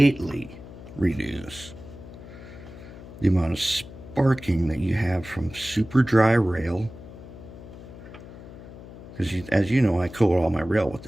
reduce the amount of sparking that you have from super dry rail. Because as you know, I coat all my rail with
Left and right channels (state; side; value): noise; left; hum, 15 dB below the sound